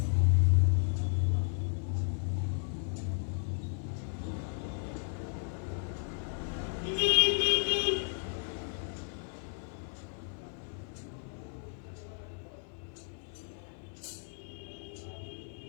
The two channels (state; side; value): silent; right; 55 dB below the other